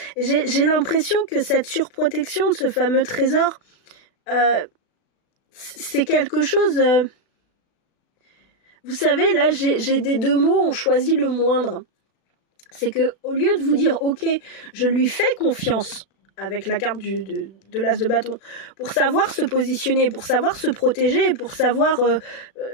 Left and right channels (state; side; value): late; right; 36 ms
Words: J'ai l'impression que cette surprotection de ce fameux trésor, c'est quelque chose... Vous savez, là, j'ai des deux mots, on choisit le moindre. C'est que au lieu de vous dire, ok, je lui fais confiance, avec la carte de l'as de bâton, pour savoir se positionner, pour savoir se protéger, pour savoir